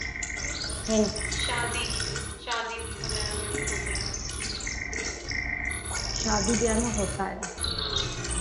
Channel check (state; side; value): identical; both; correlation 1.00